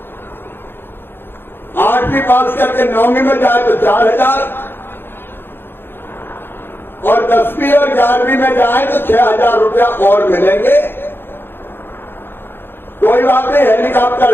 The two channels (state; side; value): late; right; 0.10 ms